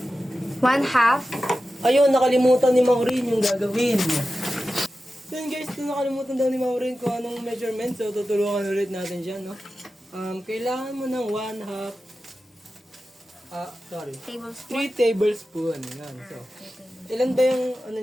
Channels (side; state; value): both; normal; correlation 0.93